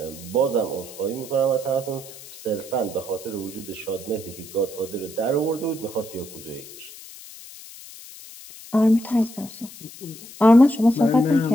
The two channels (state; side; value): noise; left; hiss, 17 dB below the sound